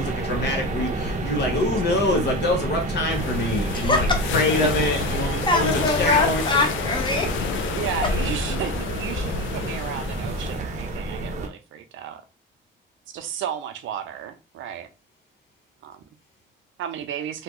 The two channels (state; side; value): normal; both; correlation 0.23